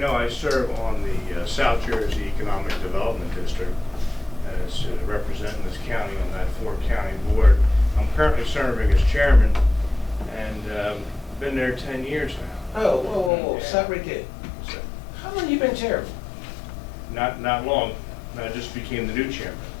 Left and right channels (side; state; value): right; drops out; at 13.3 s